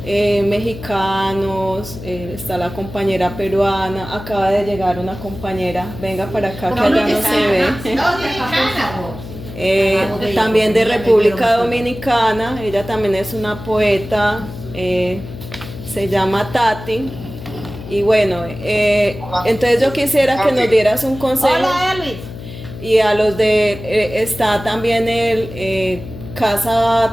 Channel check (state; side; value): noise; left; hum, 12 dB below the sound